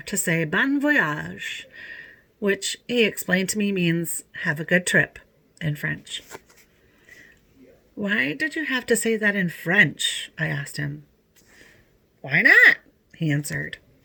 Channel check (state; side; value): identical; both; correlation 1.00